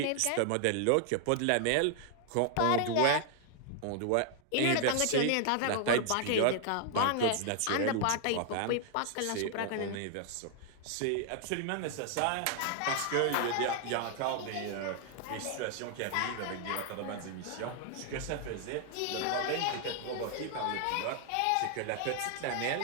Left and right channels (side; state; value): both; different; correlation 0.00